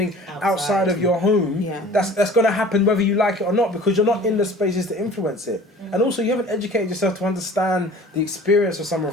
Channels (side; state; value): both; normal; correlation 0.45